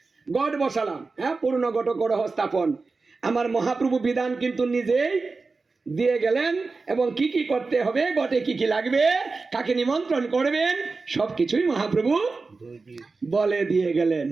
গড় বসালাম, হ্যাঁ, পূর্ণ গট গড়হ স্থাপন। আমার মহাপ্রভু বিধান কিন্তু নিজেই দিয়ে গেলেন, এবং কি কি করতে হবে, গটে কি কি লাগবে, কাকে নিমন্ত্রণ করবেন, সবকিছুই মহাপ্রভু বলে দিয়ে গেলেন।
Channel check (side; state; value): left; quieter; 4.0 dB